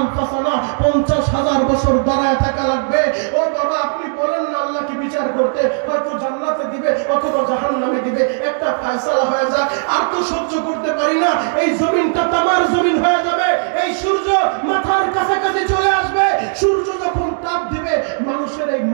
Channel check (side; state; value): left; silent; digital silence